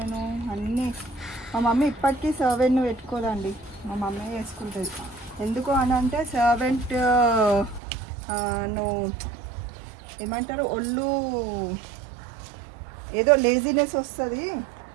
అన్నీ. మా మమ్మీ ఇప్పటికీ సర్వెంట్ను పెట్టుకోదండి, మా మమ్మీ వేసుకుంటుంది. ఎందుకు అని అంటే సర్వెంట్ నువ్వు ఏమంటారు, ఒళ్ళు ఏదో లేజినెస్ వస్తుంది,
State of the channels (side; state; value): left; drops out; at 7.8 s